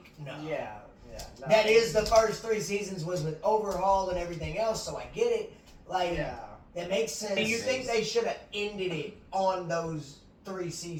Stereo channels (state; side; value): identical; both; correlation 1.00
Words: no. Yeah. No. That is the first 3 seasons was with Overhaul and everything else, so I get it. Like, Yeah. that makes sense. Do you think they should have ended it on those 3